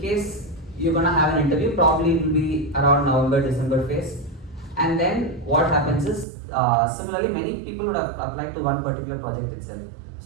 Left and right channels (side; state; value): left; drops out; at 6.2 s